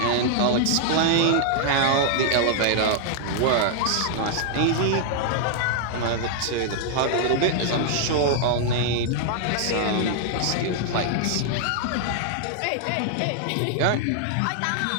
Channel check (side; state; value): both; different; correlation 0.00